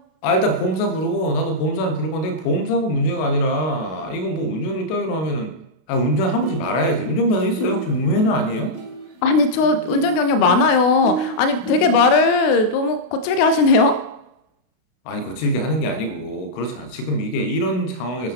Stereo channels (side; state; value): right; late; 32 ms